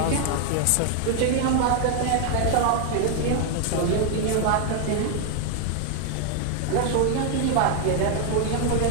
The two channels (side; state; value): both; different; correlation 0.00